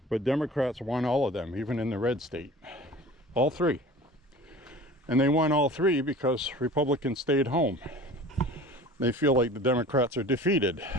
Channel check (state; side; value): normal; both; correlation 0.42